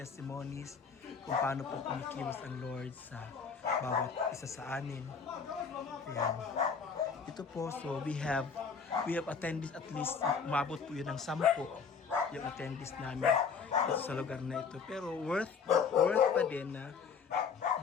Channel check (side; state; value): right; quieter; 5.9 dB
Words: kung paano po kumikilos ang Lord sa bawat isa sa amin. Ayan. Ito po, so we have attended at least, umabot po yun ng 10 yung attendees namin ito sa lugar na ito. Pero worth pa din na